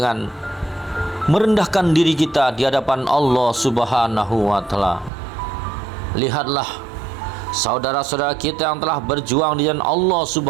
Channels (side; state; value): left; drops out; at 5.1 s